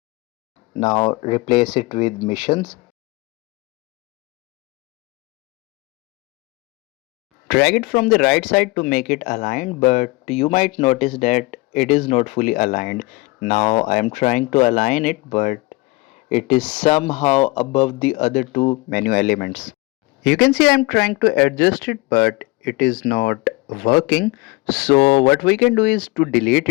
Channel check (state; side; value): quieter; right; 23.2 dB